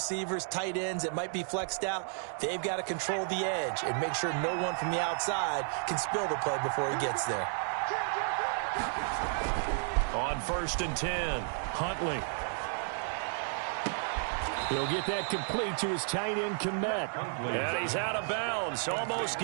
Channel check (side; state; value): left; silent; 56 dB below the other